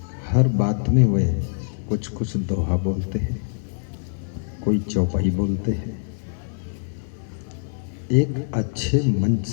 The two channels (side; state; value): right; silent; 63 dB below the other